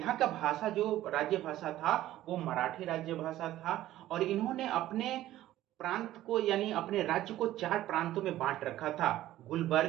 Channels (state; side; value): quieter; left; 14.3 dB